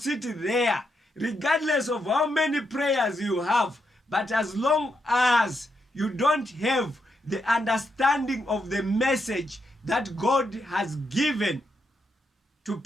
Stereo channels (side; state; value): both; normal; correlation 0.81